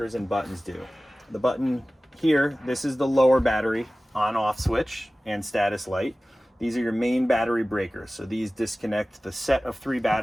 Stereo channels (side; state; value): both; normal; correlation 0.97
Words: and buttons do. The button here, this is the lower battery on-off switch and status light. These are your main battery breakers. So these disconnect the set of 3